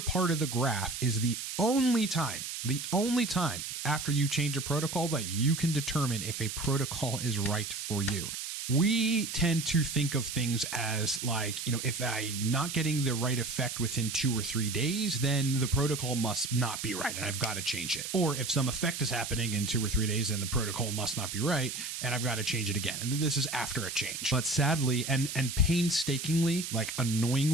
of the graph is the only time after you change a protocol that you can determine if a protocol is right for you. We tend to think of things as like, if I'm not getting the right effect within 2 or 3 days, then the protocol must not be right and I've got to change it. Or if some effect is happening in 2 or 3 days, then the protocol must not be right and I've got to change it again. And this is after a change. But sadly and painstakingly, like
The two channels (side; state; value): right; noise; hiss, 6 dB below the sound